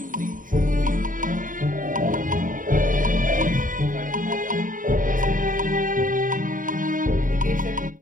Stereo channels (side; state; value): left; late; 0.39 ms